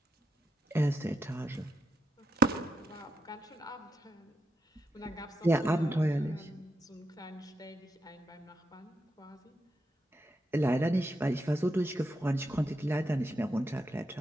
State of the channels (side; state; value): both; normal; correlation 0.84